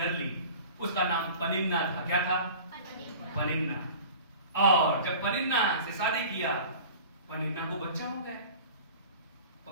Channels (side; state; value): both; inverted; correlation -0.41